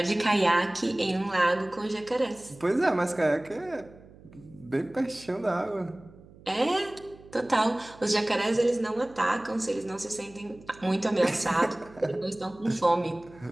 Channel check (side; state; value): right; noise; hum, 22 dB below the sound